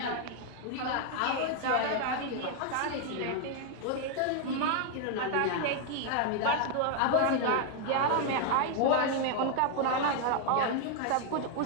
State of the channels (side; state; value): both; different; correlation 0.00